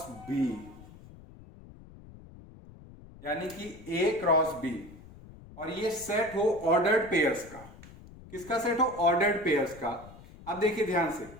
बी, यानी कि ए क्रॉस बी, और ये सेट हो ऑर्डर्ड पेयर्स का। किसका सेट हो? ऑर्डर्ड पेयर्स का। अब देखिए ध्यान से,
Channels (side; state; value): left; noise; rumble, 19 dB below the sound